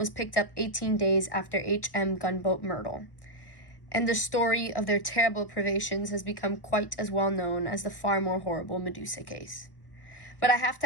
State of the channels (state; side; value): late; right; 1.2 ms